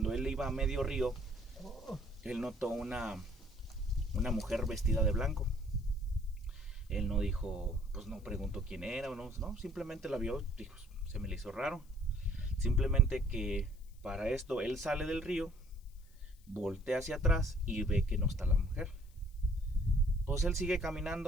él iba a medio río, él notó una mujer vestida de blanco. Él no dijo, pues no preguntó quién era o no, simplemente la vio, dijo, se me le hizo raro. Simplemente que para esto él sale del río, voltea hacia atrás y ve que no está la mujer. Pues él sigue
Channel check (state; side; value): noise; left; hiss, 29 dB below the sound